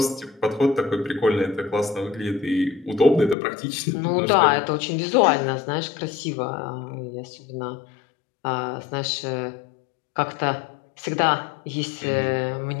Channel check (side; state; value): right; drops out; at 3.4 s